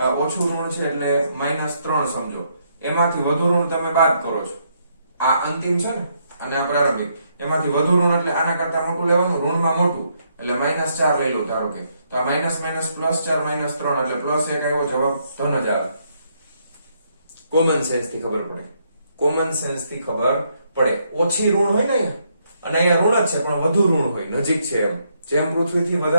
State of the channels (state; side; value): inverted; both; correlation -0.74